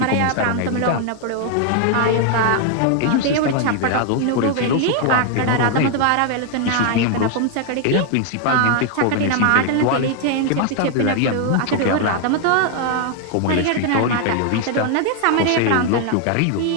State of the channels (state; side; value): different; both; correlation 0.00